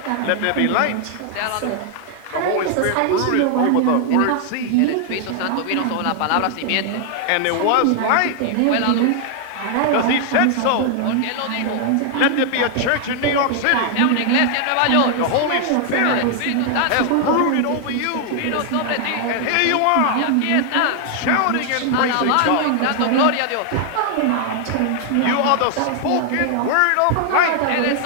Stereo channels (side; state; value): both; different; correlation 0.00